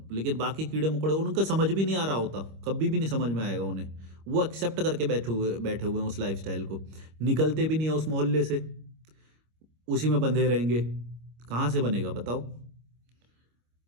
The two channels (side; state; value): left; late; 25 ms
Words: लेकिन बाकी कीड़े मकोड़े उनका समझ भी नहीं आ रहा होता, कभी भी नहीं समझ में आएगा उन्हें। वो एक्सेप्ट करके बैठे हुए हैं उस लाइफस्टाइल को, निकलते भी नहीं है उस मोहल्ले से, उसी में बंधे रहेंगे। कहाँ से बनेगा बताओ।